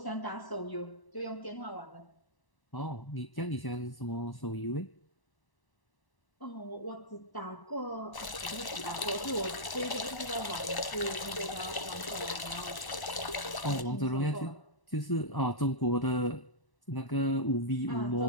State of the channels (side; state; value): right; late; 1.0 ms